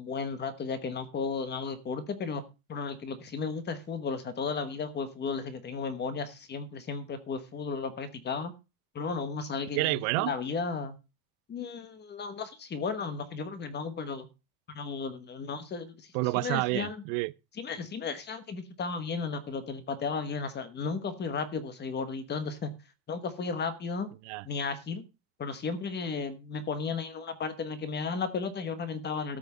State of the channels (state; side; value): normal; both; correlation 0.08